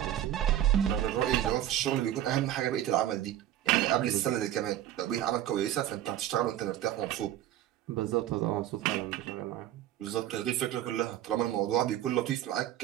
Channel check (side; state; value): left; quieter; 12.2 dB